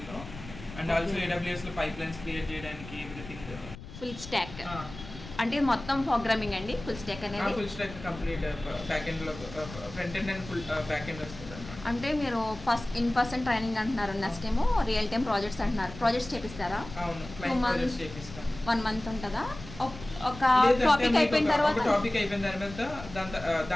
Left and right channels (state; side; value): noise; left; rumble, 14 dB below the sound